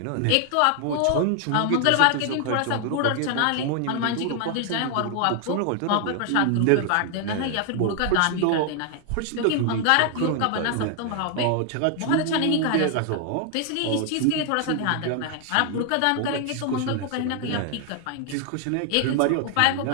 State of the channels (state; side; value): different; both; correlation 0.00